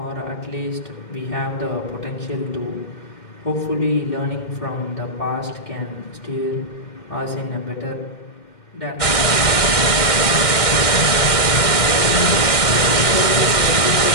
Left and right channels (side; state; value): right; late; 2.1 ms